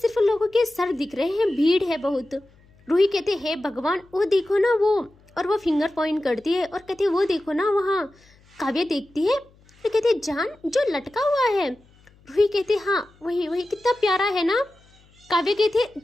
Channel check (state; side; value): noise; left; hum, 30 dB below the sound